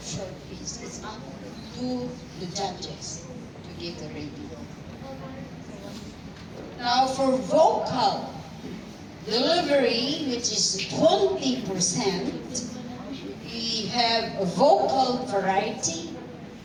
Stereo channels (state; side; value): identical; both; correlation 1.00